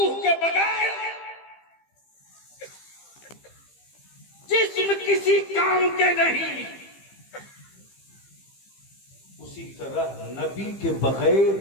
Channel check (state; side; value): late; right; 15 ms